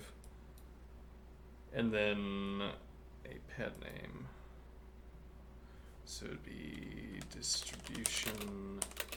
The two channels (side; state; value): both; identical; correlation 1.00